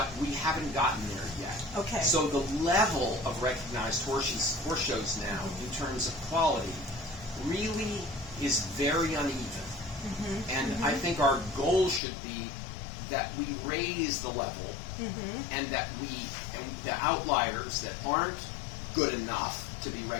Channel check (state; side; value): drops out; right; at 12.0 s